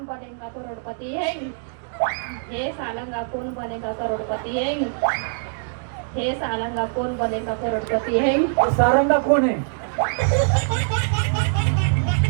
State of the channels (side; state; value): left; silent; digital silence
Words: बनेगा करोड़पति है हे सालंगा कौन बनेगा करोड़पति है हे सालंगा कौन बनेगा करोड़पति है सारंगा कोण आहे